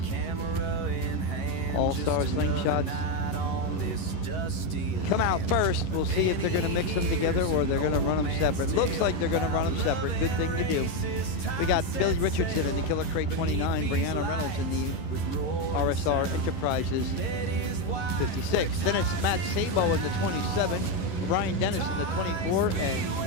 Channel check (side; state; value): right; late; 11 ms